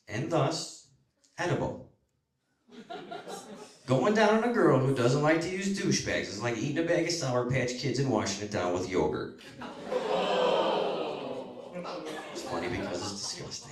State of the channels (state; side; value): identical; both; correlation 1.00